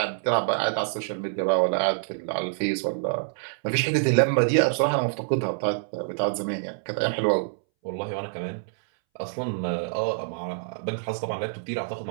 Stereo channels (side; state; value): left; silent; 61 dB below the other